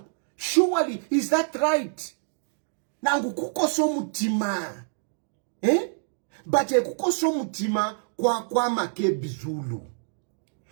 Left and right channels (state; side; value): silent; left; digital silence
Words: Surely, is that right? Nangu kukoso mutima. But kukoso mutima kwa makebizulu.